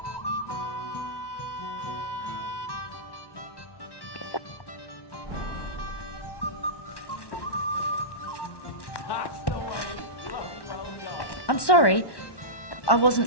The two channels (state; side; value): late; right; 1.1 ms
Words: I'm sorry. I